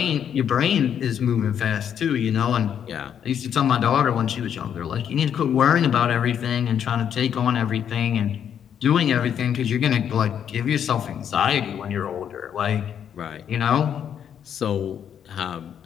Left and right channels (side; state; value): right; quieter; 8.7 dB